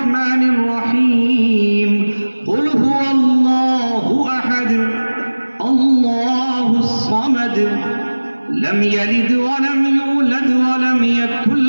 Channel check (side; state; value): both; inverted; correlation -1.00